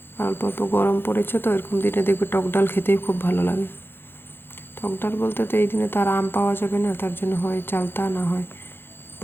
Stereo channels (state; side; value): late; right; 0.10 ms